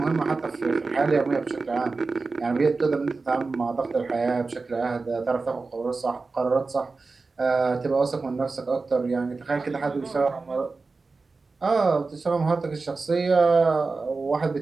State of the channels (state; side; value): quieter; left; 4.0 dB